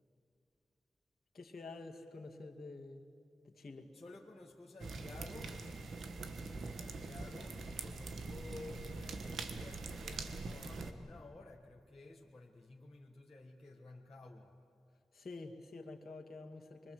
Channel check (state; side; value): normal; both; correlation 0.85